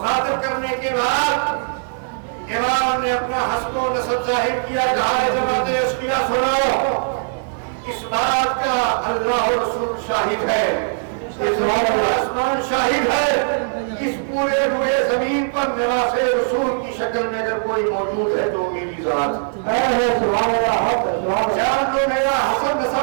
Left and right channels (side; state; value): left; silent; 60 dB below the other